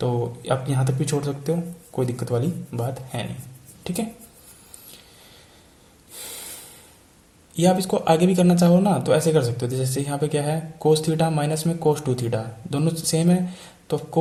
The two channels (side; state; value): both; identical; correlation 1.00